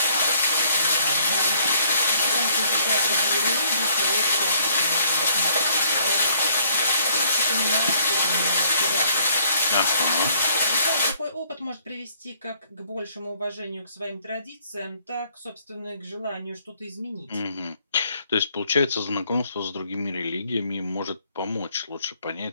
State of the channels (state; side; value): inverted; both; correlation -0.64